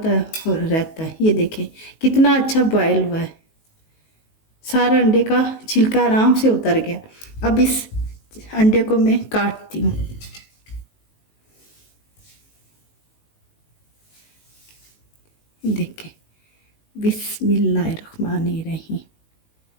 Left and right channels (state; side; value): late; right; 19 ms